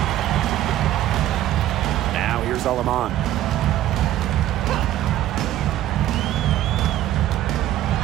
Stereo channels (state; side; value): quieter; left; 13.2 dB